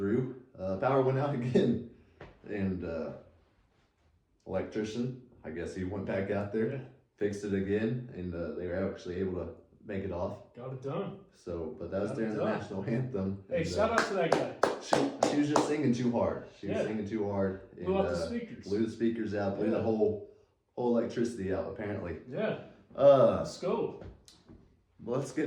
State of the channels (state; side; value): identical; both; correlation 1.00